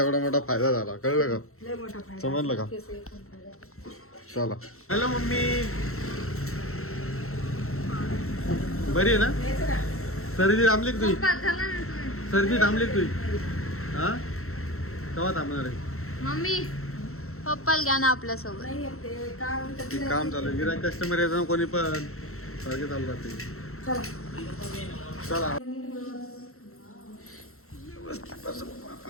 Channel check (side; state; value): right; late; 0.63 ms